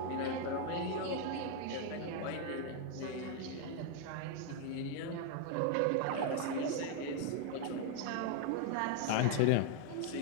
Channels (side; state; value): both; different; correlation 0.00